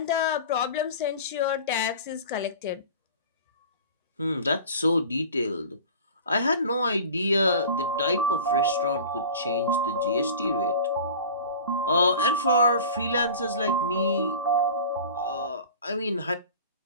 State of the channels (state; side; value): inverted; both; correlation -0.38